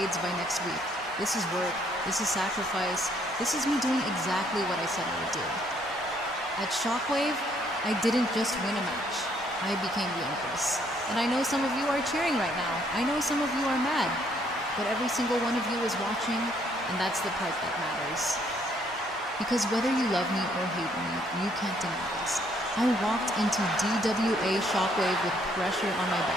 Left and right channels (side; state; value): both; normal; correlation 0.68